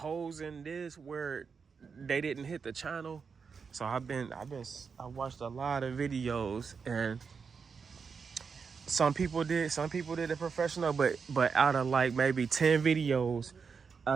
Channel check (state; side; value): quieter; left; 5.7 dB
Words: in this where they didn't hit the channel. So I watched a lot of videos, and some people did it professional, but out of like maybe 10 videos, I